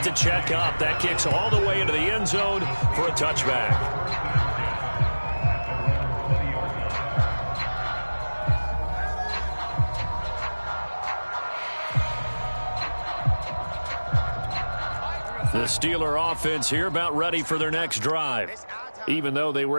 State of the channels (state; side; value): inverted; both; correlation -1.00